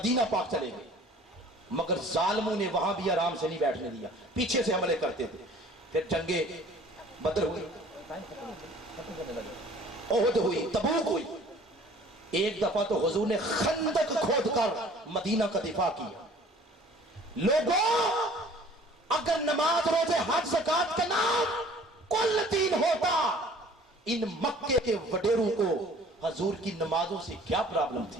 پاک چلے گئے، مگر ظالموں نے وہاں بھی آرام سے نہیں بیٹھنے دیا، پیچھے سے حملے کرتے تھے۔ پھر جنگیں بدر ہوئی، احد ہوئی، تبوک ہوئی، ایک دفعہ تو حضور نے خندق کھود کر مدینہ کا دفاع کیا۔ لوگوں، اگر نماز، روزے، حج، زکات کا نام کل دین ہوتا، ان مکے کے وڈیروں کو حضور کی نمازوں سے کیا پرابلم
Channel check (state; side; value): normal; both; correlation 0.50